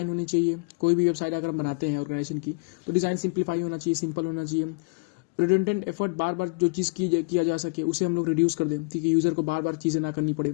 होनी चाहिए। कोई भी वेबसाइट अगर हम बनाते हैं ऑर्गेनाइजेशन की तो डिज़ाइन सिंप्लीफाई होना चाहिए, सिंपल होना चाहिए। रिडंडेंट एफर्ट, बार बार जो चीज़ किया जा सके उसे हम लोग रिड्यूस कर दें, ठीक है, यूज़र को बार बार चीज़ें ना करनी पड़े।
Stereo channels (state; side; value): quieter; right; 31.8 dB